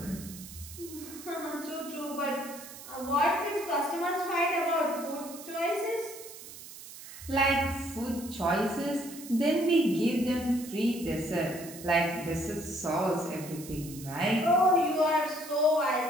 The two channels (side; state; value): right; noise; hiss, 14 dB below the sound